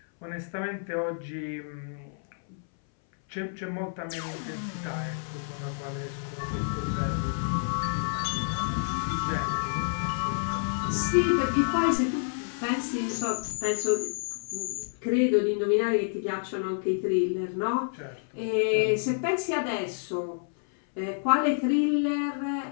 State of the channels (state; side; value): silent; right; 59 dB below the other